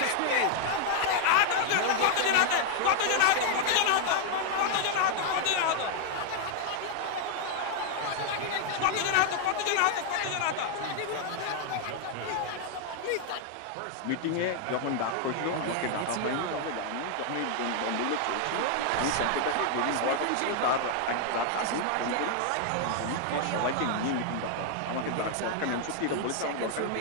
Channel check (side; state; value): both; different; correlation 0.00